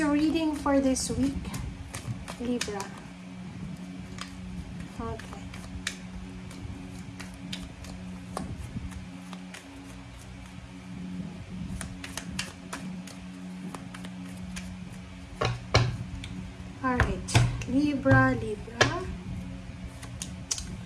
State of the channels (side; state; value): both; identical; correlation 1.00